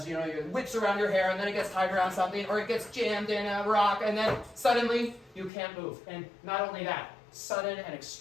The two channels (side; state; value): right; drops out; at 5.5 s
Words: it whips around your hair and then it gets tied around something, or it gets jammed in a rock, and then suddenly you can't move. And not only that, sudden and